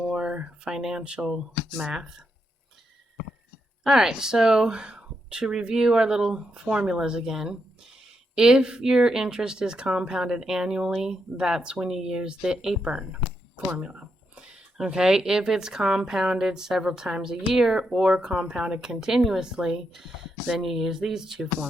financial math. All right, so to review our little formulas again, if your interest is compounded annually, that's when you use the APERN formula. Okay, if it's compounded several times a year or compounded continuously, then you use these two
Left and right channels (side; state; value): both; normal; correlation 0.82